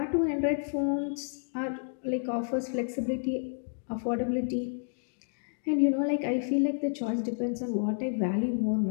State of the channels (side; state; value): right; silent; digital silence